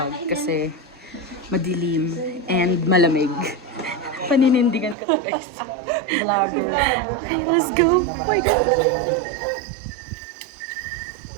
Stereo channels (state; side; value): drops out; left; at 5.0 s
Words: kasi madilim and malamig. Paninindigan ko to guys. Vlogger. Okay, let's go. Oh my God.